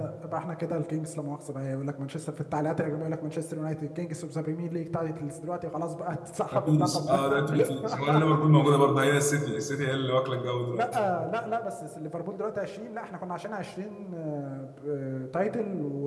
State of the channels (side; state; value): both; identical; correlation 1.00